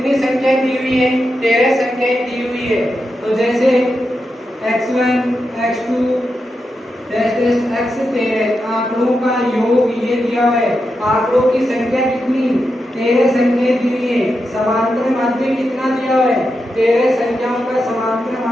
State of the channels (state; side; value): normal; both; correlation 0.87